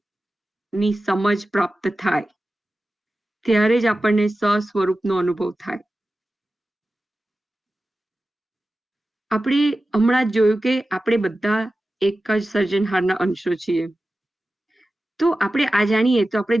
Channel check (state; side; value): normal; both; correlation 0.94